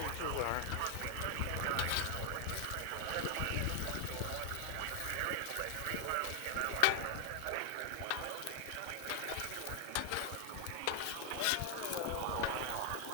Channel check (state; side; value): different; both; correlation 0.00